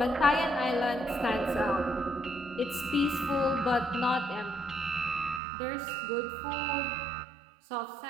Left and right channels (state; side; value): drops out; left; at 5.4 s